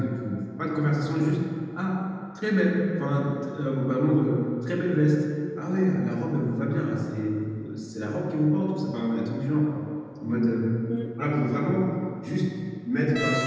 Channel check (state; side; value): identical; both; correlation 1.00